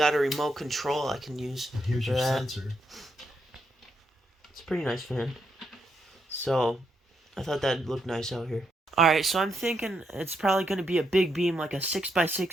a remote control I can use. And here's your sensor. It's a pretty nice fan. So I thought that'd look nice out here. Alright, so I'm thinking it's probably going to be a big beam, like a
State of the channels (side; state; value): both; normal; correlation 0.79